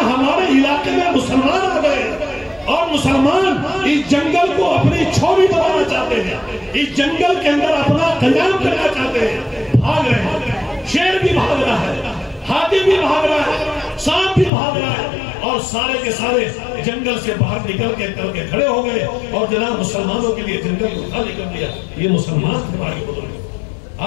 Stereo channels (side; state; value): right; drops out; at 14.5 s